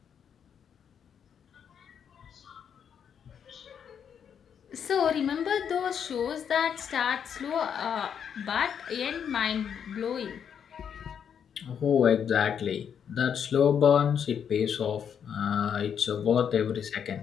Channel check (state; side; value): quieter; right; 7.9 dB